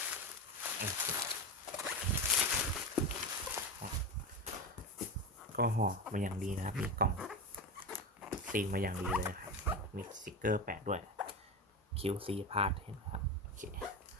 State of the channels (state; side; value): normal; both; correlation 0.19